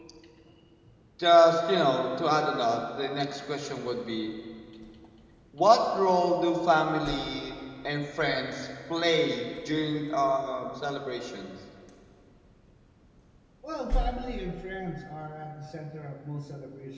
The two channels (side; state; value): both; identical; correlation 1.00